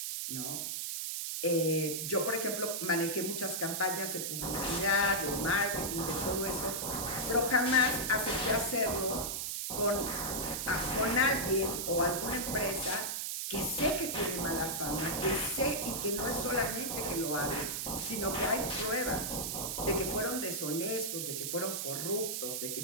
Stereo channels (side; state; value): right; noise; hiss, 2 dB below the sound